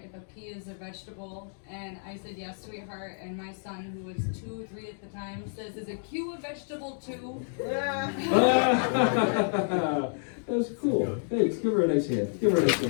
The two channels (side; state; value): right; silent; digital silence